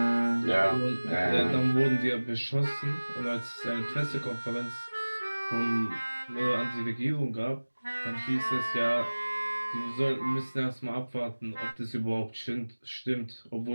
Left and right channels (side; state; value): both; inverted; correlation -1.00